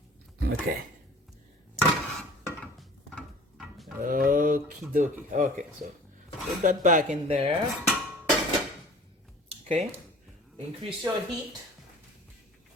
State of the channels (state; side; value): normal; both; correlation 0.45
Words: Okay. Okie dokie. Okay, so put that back in there. Okay. Increase your heat.